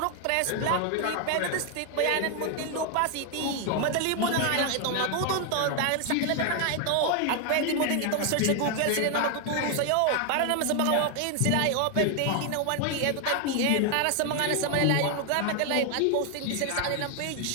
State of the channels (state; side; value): different; both; correlation 0.00